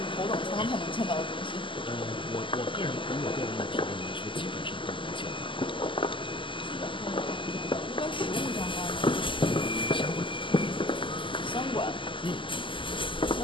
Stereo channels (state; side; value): late; right; 0.25 ms